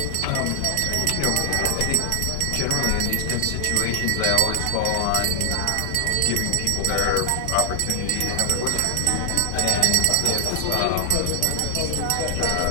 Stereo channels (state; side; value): different; both; correlation 0.00